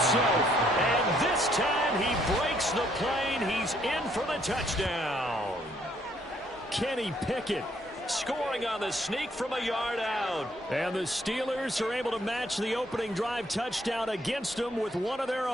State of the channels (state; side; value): normal; both; correlation 0.68